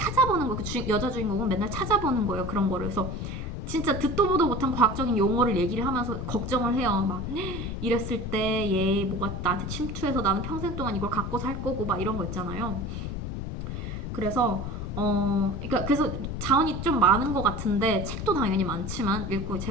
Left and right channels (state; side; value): noise; left; rumble, 5 dB below the sound